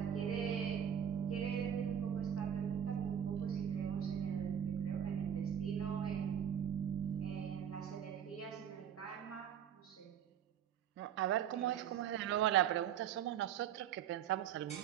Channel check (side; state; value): left; quieter; 9.1 dB